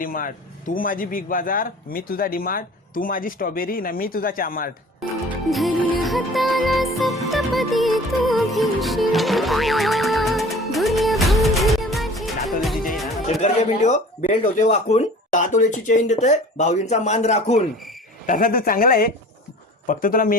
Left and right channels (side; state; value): both; normal; correlation 0.44